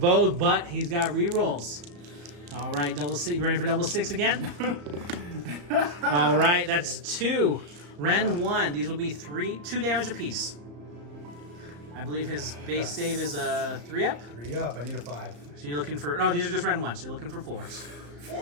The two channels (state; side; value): late; left; 34 ms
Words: but he's got rerolls. All right, double 6. You ready for double 6 again? All right, that's 2. Ren 1. These will be 2 damage apiece. I believe his base save is a 3-up. 3 up. I need a 5. So you're looking for... No, these are just Ren 1, so you're looking for 4s.